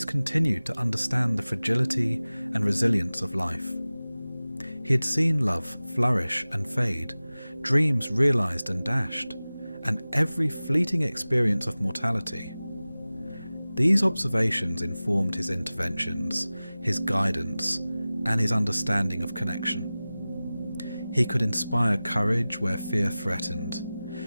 continued to understand the fragility and resilience of life. He had seen love flourish and fade, dreams realized and dashed, and every fleeting experience of mortality. These observations informed his interventions, his guidance, and his understanding of connection. He could inspire courage where fear threatened,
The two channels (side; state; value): both; inverted; correlation -0.97